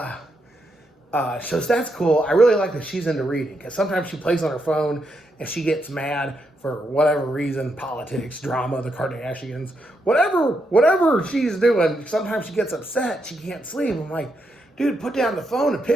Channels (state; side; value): normal; both; correlation 0.81